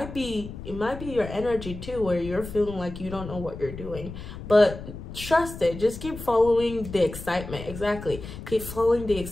be your energy too, where you're feeling like you don't know what you're doing. But trust it. Just keep following the excitement. Exactly. Keep following the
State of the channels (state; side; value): noise; left; rumble, 11 dB below the sound